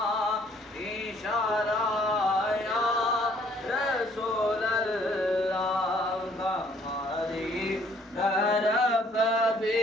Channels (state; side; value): normal; both; correlation 0.62